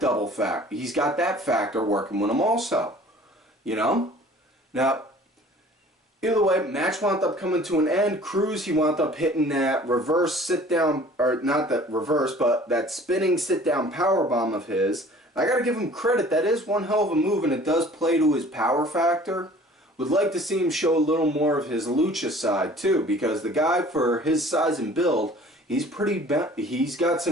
factor. He's got that factor working with him also, you know? Now, either way, match wound up coming to an end. Crews, he wound up hitting that reverse sit-down, or not that reverse, but that spinning sit-down powerbomb of his. I gotta give him credit, that is one hell of a move, and it does play to his power factor. Would like to see him show a little more of his lucha side too, because the guy, for his size and build, he's got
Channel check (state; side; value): normal; both; correlation 0.49